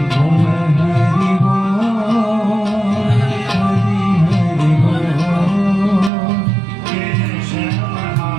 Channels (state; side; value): drops out; left; at 6.1 s